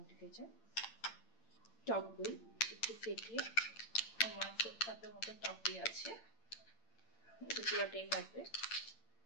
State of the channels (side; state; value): right; late; 8.8 ms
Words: কেচাপ, টক দই একটু ফেটিয়ে, আমার 1 কাপের মতো টক দই আছে, এটা পুরোটাই লাগবে।